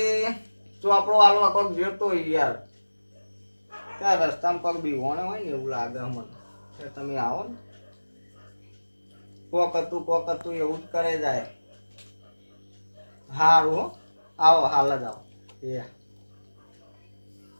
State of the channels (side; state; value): both; inverted; correlation -1.00